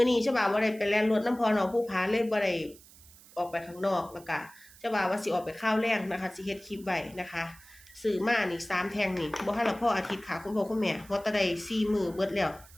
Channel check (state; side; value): noise; right; hiss, 23 dB below the sound